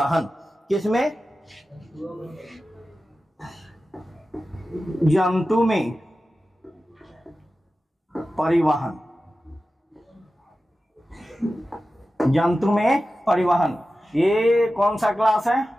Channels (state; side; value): normal; both; correlation 0.94